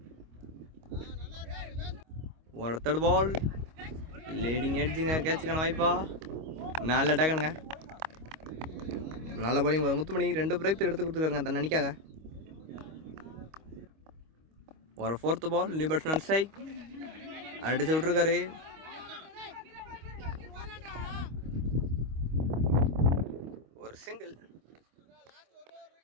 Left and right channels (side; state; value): left; late; 25 ms